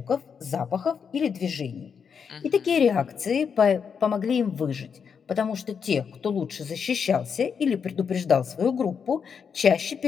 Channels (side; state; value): right; quieter; 6.6 dB